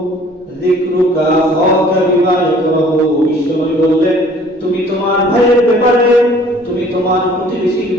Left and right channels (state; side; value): normal; both; correlation 0.54